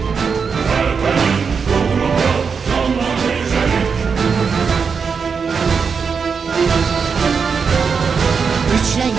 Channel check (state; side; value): quieter; left; 5.8 dB